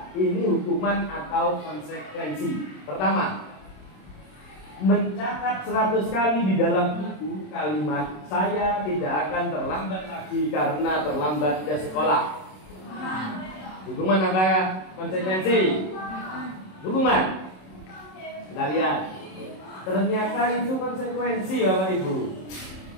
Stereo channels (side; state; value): right; late; 27 ms